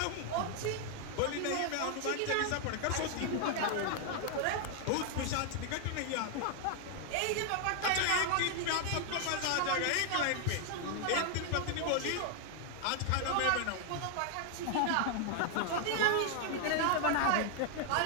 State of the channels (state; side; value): different; both; correlation 0.00